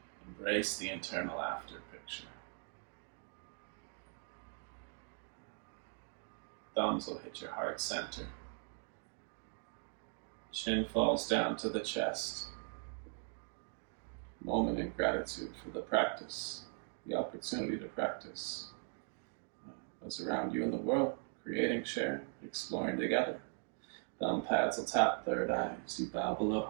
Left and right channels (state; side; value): silent; left; 51 dB below the other